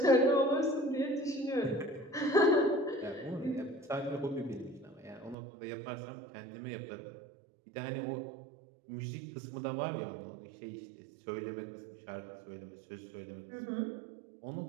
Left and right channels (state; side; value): drops out; left; at 5.4 s